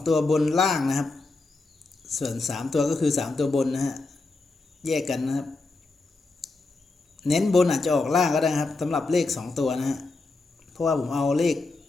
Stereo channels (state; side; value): quieter; right; 3.5 dB